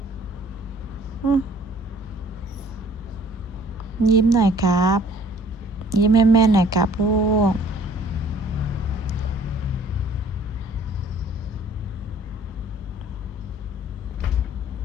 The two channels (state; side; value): normal; both; correlation 0.54